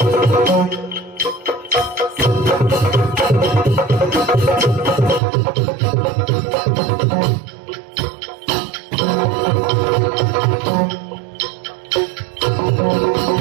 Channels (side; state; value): left; drops out; at 5.2 s